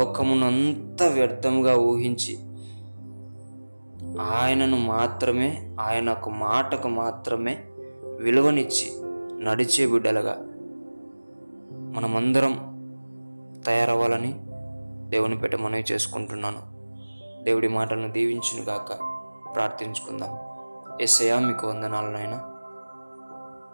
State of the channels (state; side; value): inverted; both; correlation -1.00